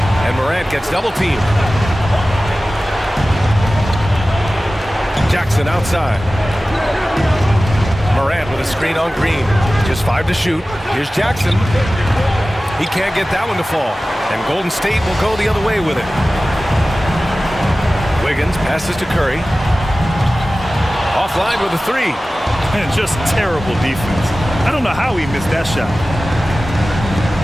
And Morant gets double teamed. Jackson outside. Morant with a screen on Green. Just 5 to shoot. Here's Jackson. He can't get that one to fall. And Golden State will go the other way with it. Wiggins passes to Curry. Offline with a three. And just terrible defense. I don't know how he missed that shot.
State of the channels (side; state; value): both; normal; correlation 0.96